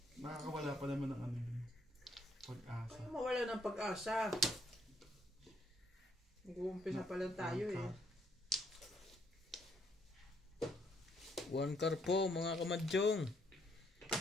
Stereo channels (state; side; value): normal; both; correlation 0.70